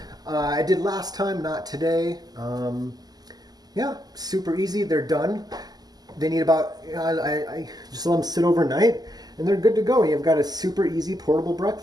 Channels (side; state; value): left; late; 0.19 ms